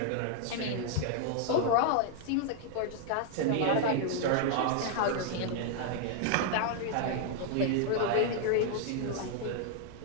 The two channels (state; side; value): different; both; correlation 0.00